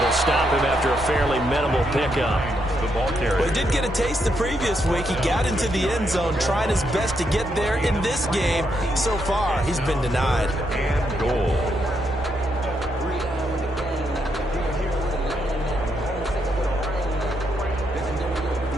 will stop him after a fairly minimal pickup. the ball carrier. Well, he did get a taste the previous week. He got into the end zone, trying his best to get there in this game. So far, he's been denied. And goal.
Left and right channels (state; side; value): normal; both; correlation 0.79